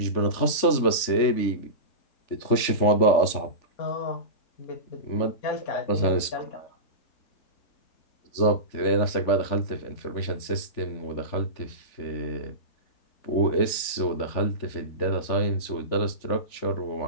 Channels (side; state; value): right; late; 3.5 ms